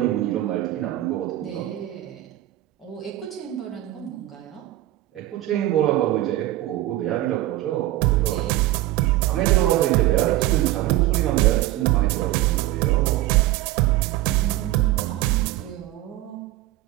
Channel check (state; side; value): quieter; left; 15.6 dB